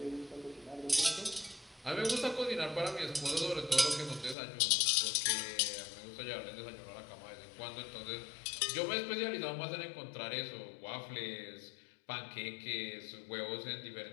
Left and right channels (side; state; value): right; drops out; at 4.4 s